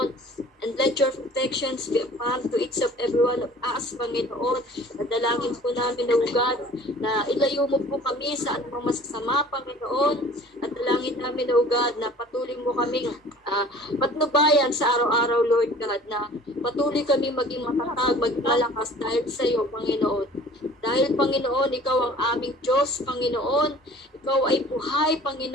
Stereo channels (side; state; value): both; normal; correlation 0.48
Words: And let your protections be upon to each of every one of us, Panginoon. Nadalangin po namin, O God, na ilayo mo po kami sa anumang masasama, Panginoon. At dalangin namin, O God, na patuloy mo kaming patnubayan sa araw-araw, Lord God, na patuloy kami maging matatag, maging malakas dahil sa iyo, Panginoon. Dahil, Panginoon, Ikaw ang aming Diyos, Panginoon. Ikaw ay buhay,